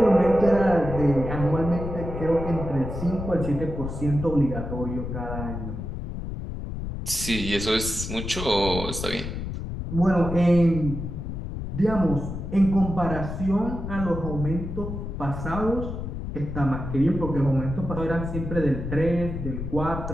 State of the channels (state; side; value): noise; left; rumble, 6 dB below the sound